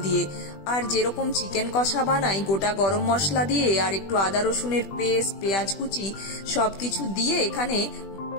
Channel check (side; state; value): right; late; 20 ms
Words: দিয়ে। আর যেরকম চিকেন কষা বানাই, গোটা গরম মশলা দিয়ে আর একটু আদা রসুনের পেস্ট, পেঁয়াজ কুচি সবকিছু দিয়ে এখানে